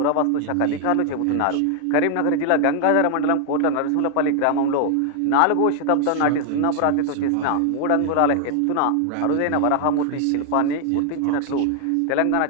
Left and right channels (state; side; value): different; both; correlation 0.00